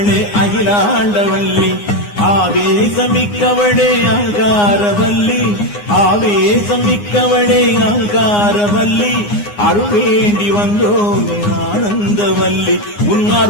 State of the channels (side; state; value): right; late; 9.7 ms